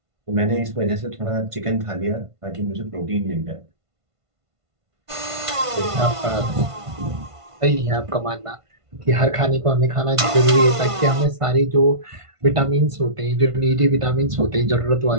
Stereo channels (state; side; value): late; left; 1.5 ms